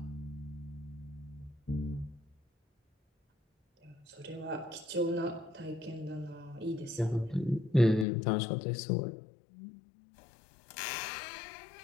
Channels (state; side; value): drops out; right; at 8.1 s